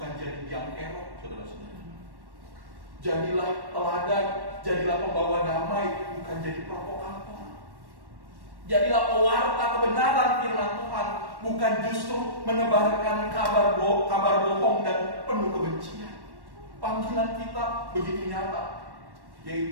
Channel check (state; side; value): late; left; 1.1 ms